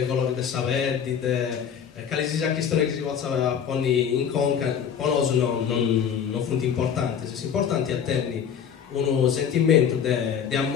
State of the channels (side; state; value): right; quieter; 8.0 dB